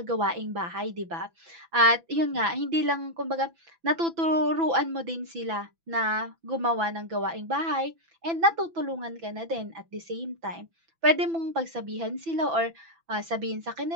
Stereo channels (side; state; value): left; late; 6.0 ms